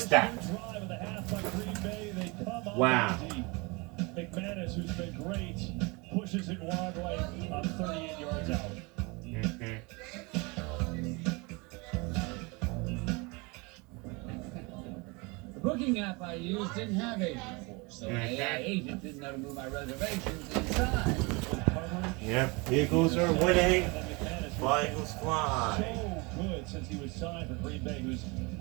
that. drive of the half by Green Bay, they come up Wow. empty. McManus, who's been great, pushes it wide right on 38 yards out. The booking app I used didn't have agent force, so my AI agent didn't know to move my reservations inside. Yep, Eagles are winning. Fly, Eagles fly. So good since he was signed for Green Bay, who's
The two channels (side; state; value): left; quieter; 27.5 dB